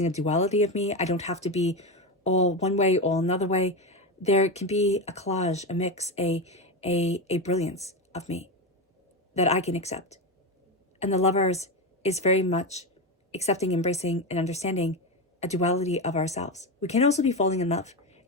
a duality of me. I don't have to be all one way, all another way. There can be a collage, a mix, a brilliance of me that I can accept. And the Lovers is very much accepting, embracing, and understanding a duality of ourselves. We can also be falling in love.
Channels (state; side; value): normal; both; correlation 0.16